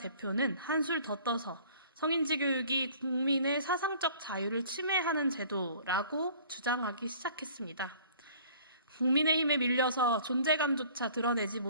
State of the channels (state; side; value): inverted; both; correlation -0.51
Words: 한술 더 떠서 성인지 교육이 국민의 사상적 자유를 침해하는 제도라고 주장하기 시작했습니다. 국민의힘에 밀려서 존재감조차 드러내지